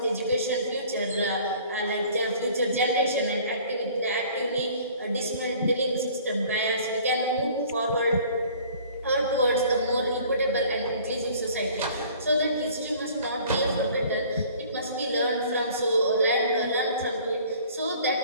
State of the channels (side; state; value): both; inverted; correlation -0.51